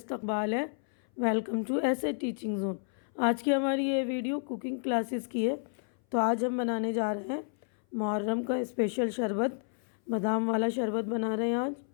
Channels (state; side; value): silent; right; 57 dB below the other